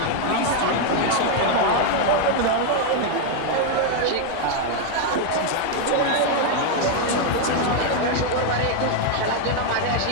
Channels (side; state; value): both; different; correlation 0.01